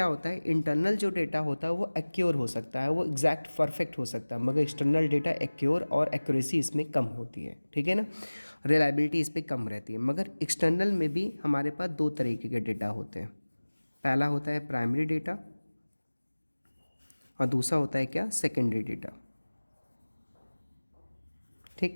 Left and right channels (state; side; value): inverted; both; correlation -1.00